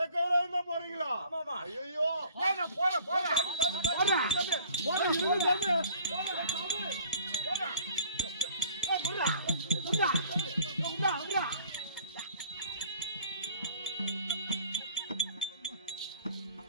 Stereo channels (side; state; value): both; inverted; correlation -0.51